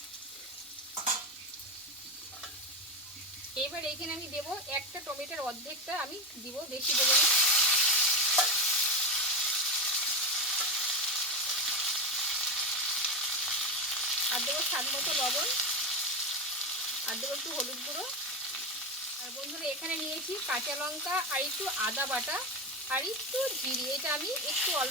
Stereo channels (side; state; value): both; normal; correlation 0.14